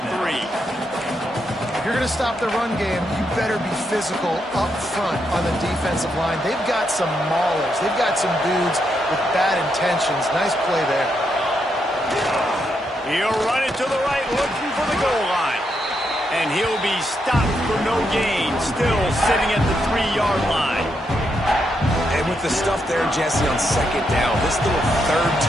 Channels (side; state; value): both; normal; correlation 0.80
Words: 3. If you're going to stop the run game, you better be physical up front on the defensive line. They've got some maulers. They've got some dudes with bad intentions. Nice play there. He'll run it to the right, looking for the goal line. And he'll be stopped for no gain, still sitting at the 3-yard line. And with the stuff there, Jesse, on 2nd down, this little third